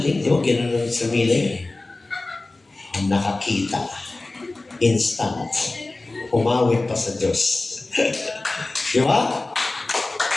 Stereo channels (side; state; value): right; quieter; 3.1 dB